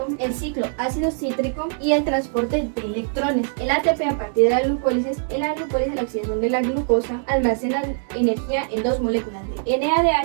el ciclo ácido cítrico y el transporte de electrones. El ATP a partir de la glucólisis, la oxidación de la glucosa almacena energía en dos moléculas de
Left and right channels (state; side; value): silent; left; 64 dB below the other